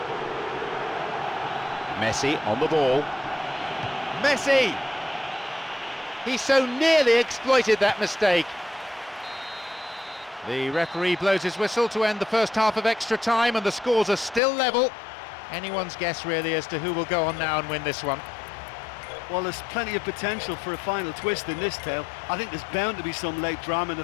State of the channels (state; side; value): drops out; right; at 14.4 s